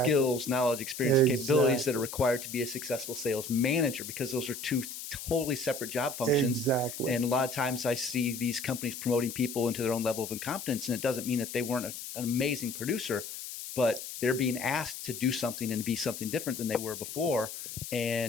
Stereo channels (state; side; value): noise; left; hiss, 9 dB below the sound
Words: knowledge, experience, capabilities that are required to be a successful sales manager, because those are two totally separate job functions. Exactly. And a lot of times I see these companies promoting people into their own level of incompetence, and it doesn't mean that they weren't an amazing producer, but they're being asked to do something and be something different than they were before,